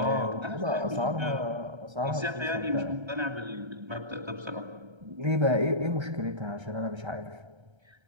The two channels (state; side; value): late; left; 1.3 ms